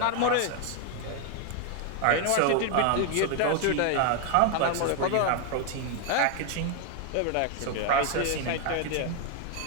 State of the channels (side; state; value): both; different; correlation 0.01